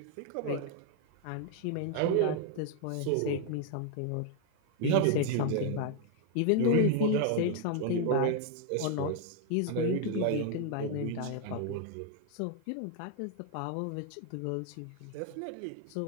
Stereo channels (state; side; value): different; both; correlation 0.00